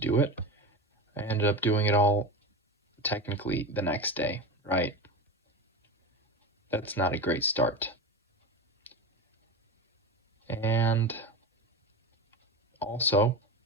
it. I ended up doing it all technically the next day, right? That's not a great start. And also,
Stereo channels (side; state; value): both; normal; correlation 0.23